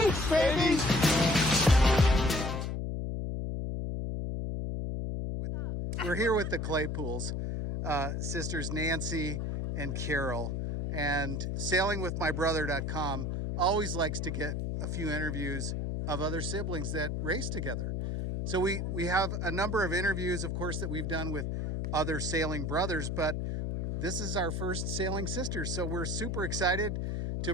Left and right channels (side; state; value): left; noise; hum, 1 dB below the sound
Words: baby! We're here with the Claypools, sisters Nancy and Carol, and sailingwithmybrother.com always likes to get a few interviews of other siblings that race together. So we have a number of interviews, of course, that we've done with other sailing brothers, but this is our first Sailing Sisters. So we're super excited to